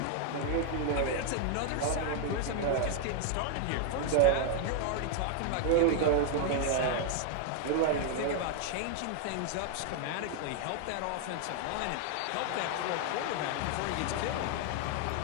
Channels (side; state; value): both; different; correlation 0.00